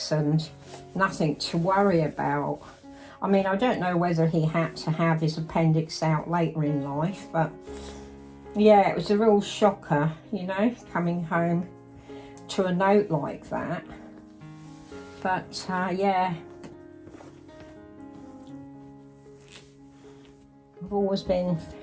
and nothing to worry about. I mean, I don't know whether he had to have his appendix out later in life, but yeah, it was a real shocker, you know, coming home to a note like that. But yeah, I've always been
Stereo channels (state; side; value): identical; both; correlation 1.00